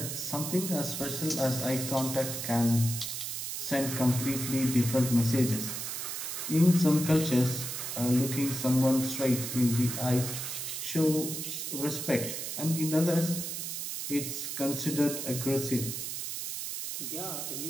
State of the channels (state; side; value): noise; right; hiss, 5 dB below the sound